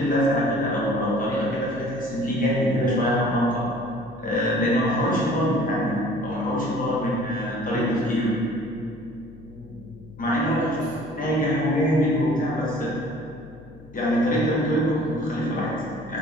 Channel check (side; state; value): left; noise; hum, 21 dB below the sound